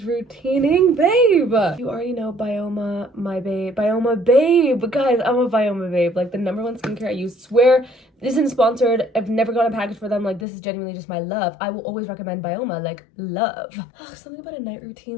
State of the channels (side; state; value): right; drops out; at 10.5 s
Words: routining, babe. You already know Bioma, my babe. Bioma babe. Guys, I'm a Bioma babe. Like, the #1 skincare I use. Swear, this isn't sponsored. I've never gotten a package for them. Like, this is genuinely just my love. I will always recommend Bioma. Like, love. Ugh, something about a night